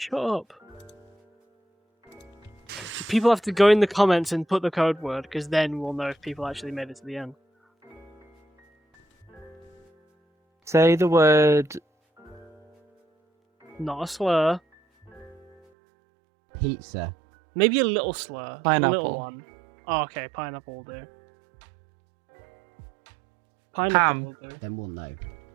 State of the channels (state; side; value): drops out; left; at 15.6 s